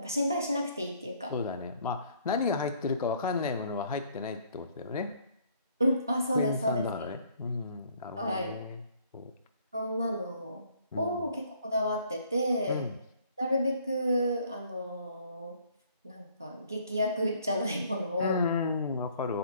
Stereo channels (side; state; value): both; inverted; correlation -0.61